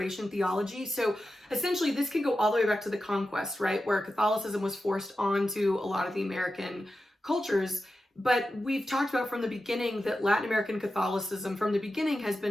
theology. So essentially, this can go all the way back to the conquest, right, where Catholicism was forced onto a lot of the American cultures. But we've talked about from the beginning that Latin American Catholicism from the beginning has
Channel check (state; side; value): normal; both; correlation 0.91